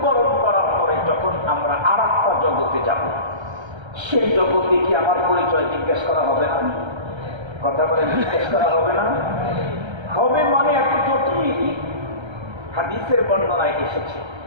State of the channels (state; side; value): late; left; 1.3 ms